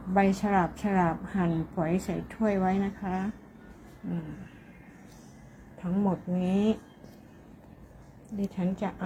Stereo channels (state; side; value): identical; both; correlation 1.00